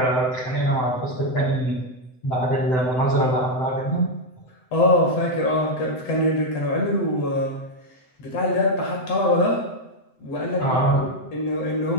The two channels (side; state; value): right; late; 7.9 ms